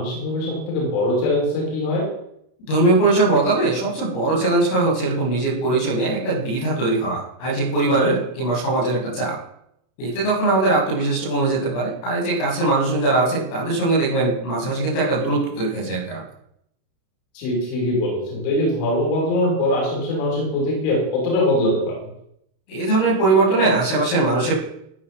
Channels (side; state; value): right; late; 32 ms